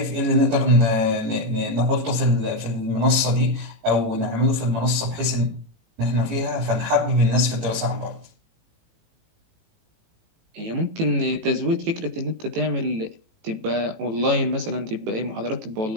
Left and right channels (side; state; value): left; late; 18 ms